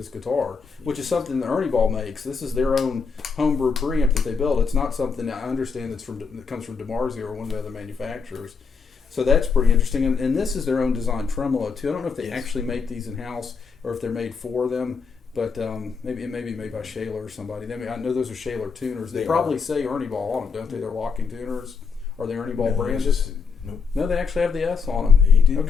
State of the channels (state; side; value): quieter; right; 5.5 dB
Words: guitar, which is something that ErnieBall makes. This is their own homebrew preamp that they build. It's not something that I understand that comes from DiMarzio or one of the other manufacturers. So that's pretty interesting. And this is their own design tremolo too. I don't know if they actually make these in house or if they're made for them. But maybe it may be made by Schaller or somebody. I know those are Schaller tuners. They probably say ErnieBall on them, don't they? They're locking tuners. Are they ErnieBall branded? Nope. No, they actually have the S on them. They do.